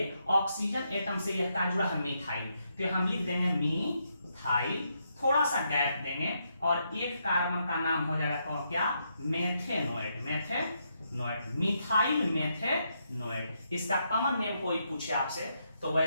ऑक्सीजन एटम से यह का जुड़ा है मिथाइल, तो हम लिख देंगे मिथाइल, थोड़ा सा गैप देंगे और एक कार्बन का नाम हो जाएगा कौन, क्या, मेथेनोएट। मिथाइल मेथेनोएट। इसका कॉमन नेम कोई पूछे आपसे तो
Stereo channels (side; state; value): both; inverted; correlation -0.79